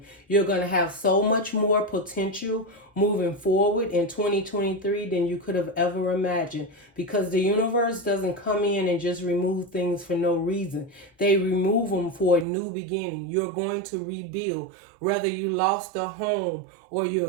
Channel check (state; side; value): drops out; left; at 12.5 s